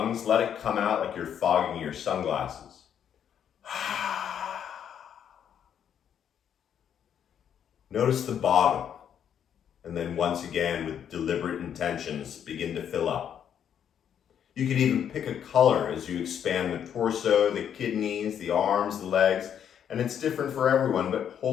let it come out like you're fogging your sunglasses. Notice the bottom. And then once again, with deliberate intentions, begin to fill up. You can even pick a color as you expand the torso, the kidneys, the arms, the legs. And it's different for everyone, but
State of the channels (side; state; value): right; quieter; 8.9 dB